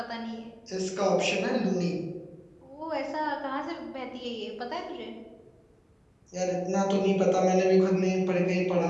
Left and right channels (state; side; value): identical; both; correlation 1.00